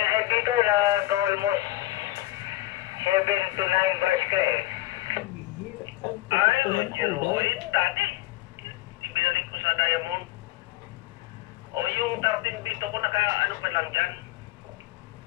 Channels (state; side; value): quieter; right; 17.2 dB